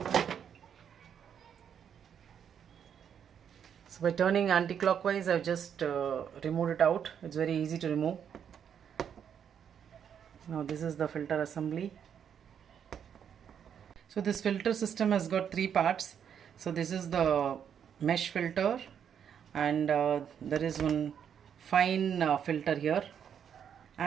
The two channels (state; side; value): quieter; left; 8.3 dB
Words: So by turning anti-clockwise, I've just removed it out. It's very easy to remove. Now this is the filter assembly. So this filter system has got three parts. So this is the mesh filter, and there is one fine filter here,